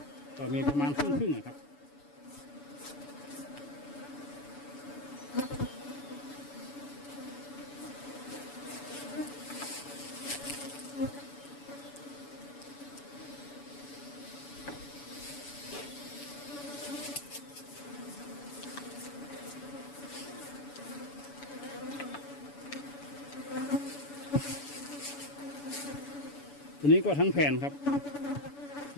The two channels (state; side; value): late; right; 7.0 ms